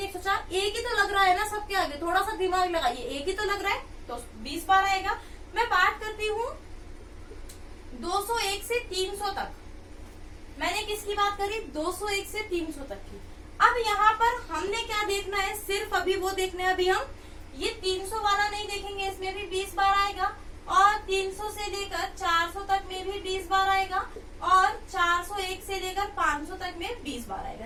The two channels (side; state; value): both; identical; correlation 1.00